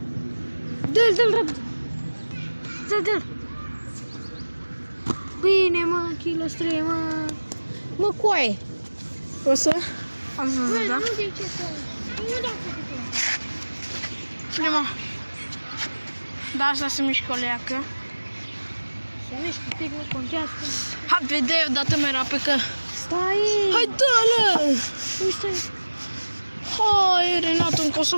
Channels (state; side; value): inverted; both; correlation -1.00